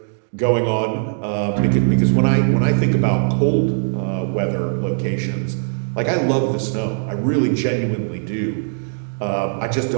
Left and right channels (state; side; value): silent; left; digital silence